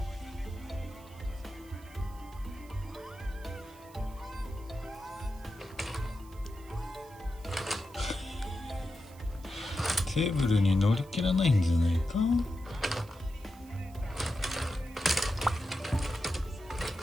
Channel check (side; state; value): right; noise; hiss, 24 dB below the sound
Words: テーブルに乗り切らないんじゃないか。